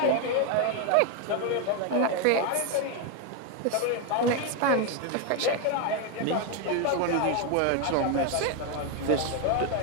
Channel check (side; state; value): both; different; correlation 0.01